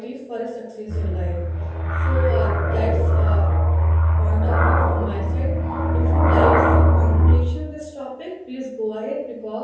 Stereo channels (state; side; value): identical; both; correlation 1.00